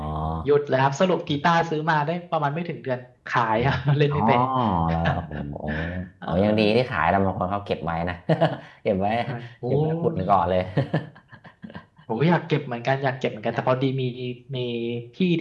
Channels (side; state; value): both; identical; correlation 1.00